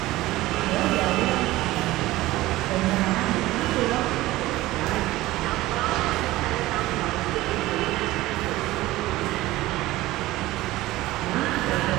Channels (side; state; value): left; quieter; 17.6 dB